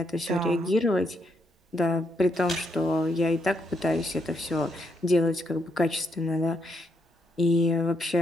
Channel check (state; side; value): normal; both; correlation 0.77